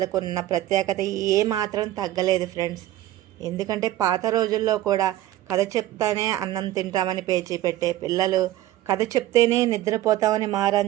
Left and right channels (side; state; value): left; quieter; 14.5 dB